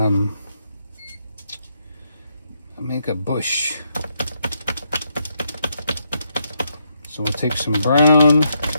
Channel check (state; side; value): inverted; both; correlation -0.79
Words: make a bush. So we'll take some brown